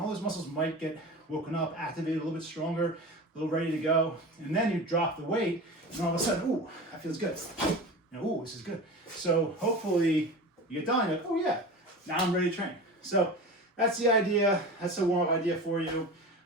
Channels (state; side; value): normal; both; correlation 0.31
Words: those muscles might get woken up, activated a little bit stronger, a little ready to go. And then you drop the weight, and all of a sudden, ooh, that feels good. Ooh, this is good. So hopefully you get done, you're like, oh yeah, now I'm ready to train. So that's the idea. That's a warm-up idea for you.